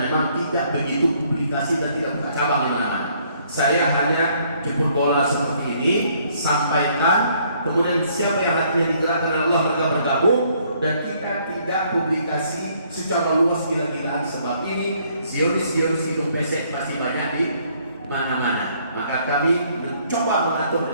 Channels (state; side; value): inverted; both; correlation -0.66